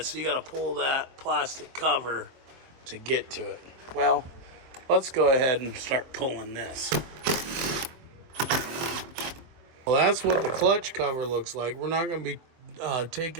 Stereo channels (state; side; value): late; left; 23 ms